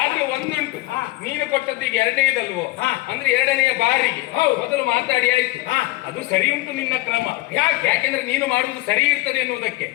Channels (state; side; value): quieter; right; 18.8 dB